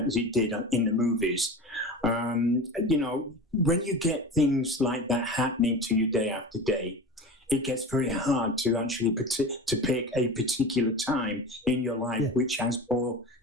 it did in the movies. When you get things like that happening to you day after day, it gets very hard to actually to pick a particular time in your life which has more,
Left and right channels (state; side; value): normal; both; correlation 0.31